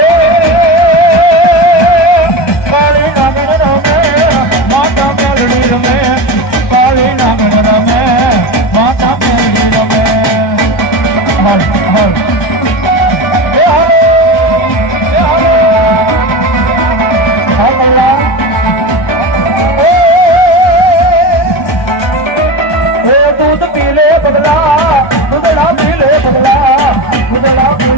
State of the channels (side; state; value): right; late; 1.2 ms